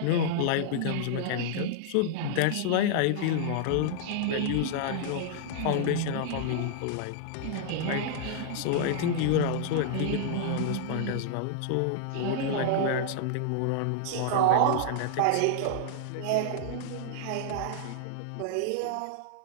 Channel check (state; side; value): different; both; correlation -0.01